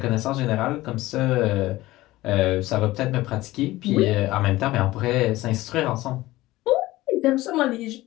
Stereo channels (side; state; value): right; quieter; 17.8 dB